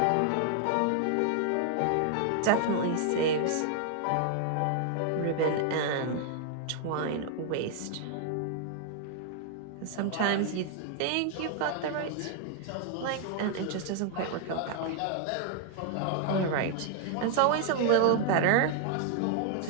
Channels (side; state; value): both; different; correlation 0.00